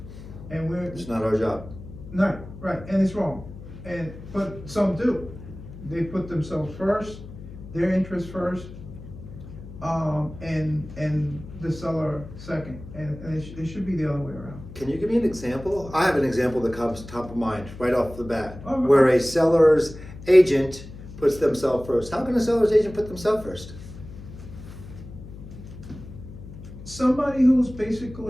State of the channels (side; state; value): left; noise; hum, 14 dB below the sound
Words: And we're, It's not our job. no, right, and it's wrong. But some do. They put themselves first, their interest first, and the seller second. And it should be the other way around. Can you give me an example? I have an example that comes top of mind right off the bat, Oh, right. where a seller's agent puts themselves first. How can a seller's agent put themselves first? Somebody who's